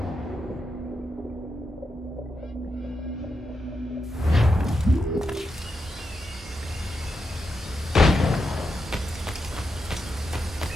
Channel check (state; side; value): normal; both; correlation 0.86